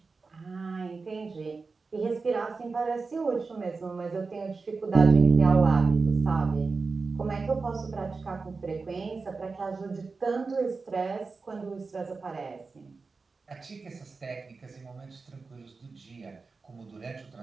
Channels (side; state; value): left; quieter; 4.3 dB